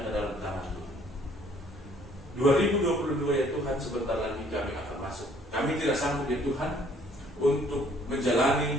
ke dalam tangan Tuhan. 2022 ya Tuhan, sebentar lagi kami akan masuk. Kami tidak sanggup ya Tuhan untuk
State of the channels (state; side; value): normal; both; correlation 0.60